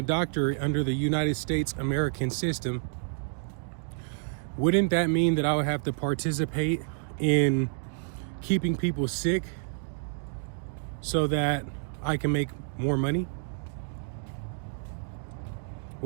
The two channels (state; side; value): silent; left; digital silence